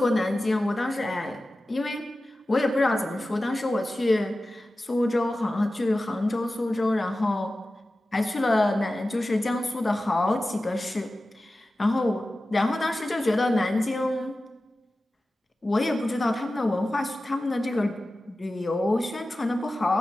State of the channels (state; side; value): normal; both; correlation 0.95